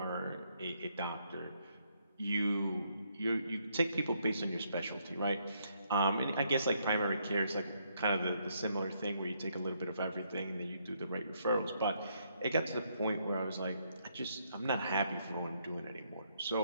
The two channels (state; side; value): inverted; both; correlation -0.73